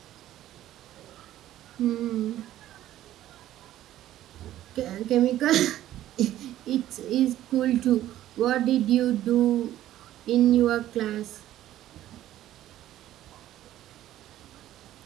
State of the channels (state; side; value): quieter; left; 13.3 dB